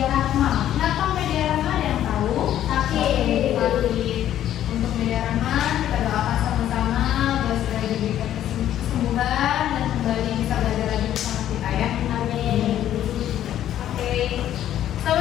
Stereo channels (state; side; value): quieter; right; 11.6 dB